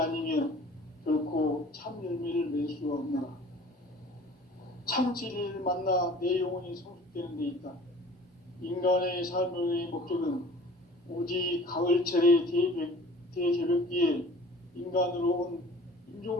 결코 참 열매를 맺을 수 없노라. 참 진리를 만나 내 영혼이 성숙되는 데 있다. 인간의 삶의 목적은 오직 가을철의 대개벽기에 인간으로 온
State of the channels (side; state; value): both; normal; correlation 0.47